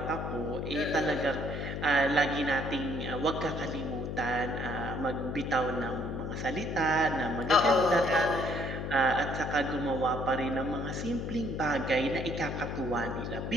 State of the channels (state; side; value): noise; left; hum, 4 dB below the sound